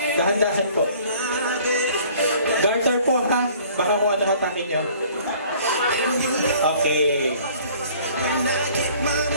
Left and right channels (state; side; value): inverted; both; correlation -0.53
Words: Dahan-dahan po. Garter po, ha? Baka kung ano hatakin nyo. Okay.